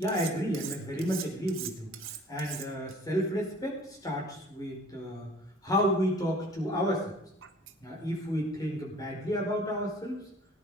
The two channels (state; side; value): normal; both; correlation 0.51